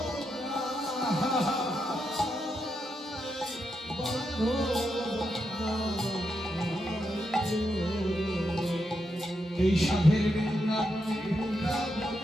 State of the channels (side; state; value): both; normal; correlation 0.84